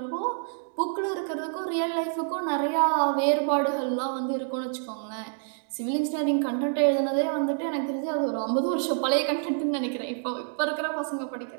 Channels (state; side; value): silent; left; digital silence